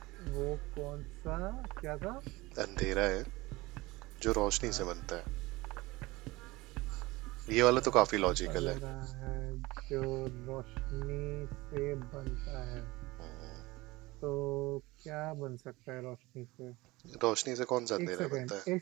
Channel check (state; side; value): quieter; left; 21.0 dB